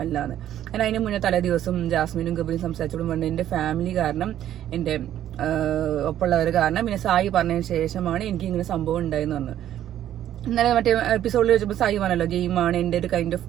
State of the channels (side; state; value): left; quieter; 11.6 dB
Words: എന്ന്. കാരണം അതിന് മുന്നേ തലേ ദിവസം ജാസ്മിനും ഗബ്രിയും സംസാരിച്ചോളും വേണ്ട എന്റെ ഫാമിലി കാരണം, എന്റെ ഒപ്പമുള്ളവർ കാരണം, പിന്നെ സായി പറഞ്ഞതിന് ശേഷമാണ് എനിക്ക് ഇങ്ങനെ സംഭവം ഉണ്ടായെന്ന് പറഞ്ഞു. ഇന്നലെ മറ്റേ എപ്പിസോഡിൽ വെച്ചപ്പോൾ സായി പറഞ്ഞല്ലോ ഗെയിമാണ്, എന്റെ ഒരു കൈൻഡ് ഓഫ്